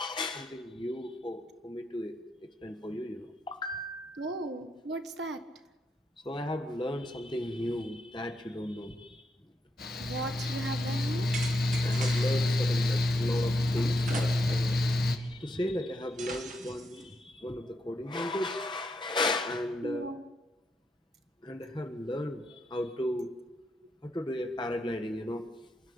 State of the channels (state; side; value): normal; both; correlation 0.80